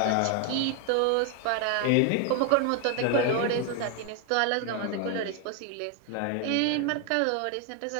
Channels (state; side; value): different; both; correlation 0.00